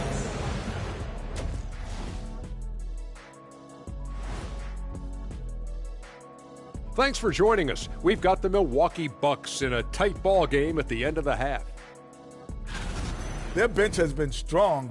Thanks for joining us. We've got the Milwaukee Bucks in a tight ball game at the end of the half. Their bench has been strong.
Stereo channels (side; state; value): both; identical; correlation 1.00